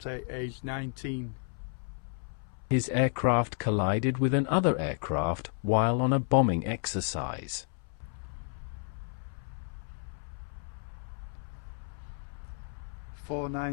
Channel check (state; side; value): silent; right; 56 dB below the other